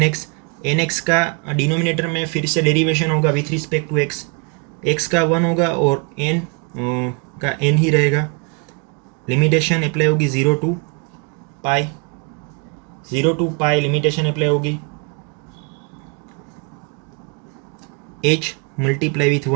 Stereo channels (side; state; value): left; quieter; 34.1 dB